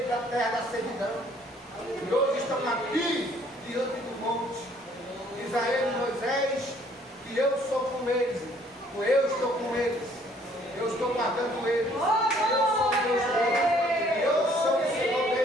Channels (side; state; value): both; normal; correlation 0.61